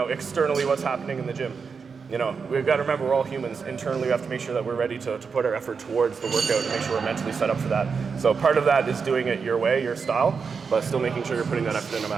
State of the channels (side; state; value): left; quieter; 5.5 dB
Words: externally what's happening in the gym. You know, we've got to remember we're all humans. Internally, we have to make sure that we're ready to put our effort towards the workout and make sure we're mentally set up for that. So part of that is doing it your way, your style, but still making sure you're putting that effort in no